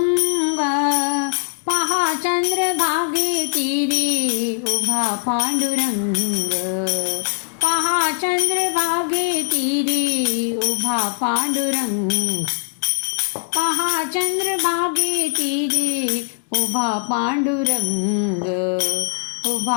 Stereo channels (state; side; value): silent; right; digital silence